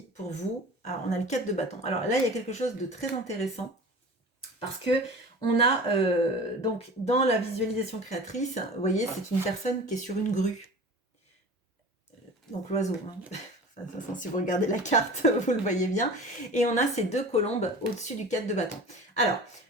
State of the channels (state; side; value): normal; both; correlation 0.38